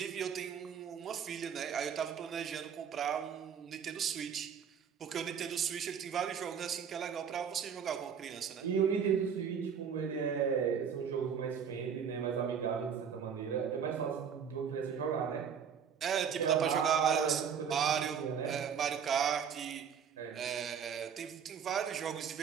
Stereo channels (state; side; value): quieter; left; 7.4 dB